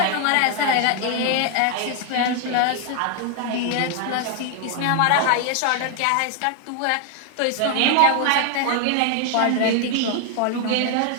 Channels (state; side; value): different; both; correlation 0.00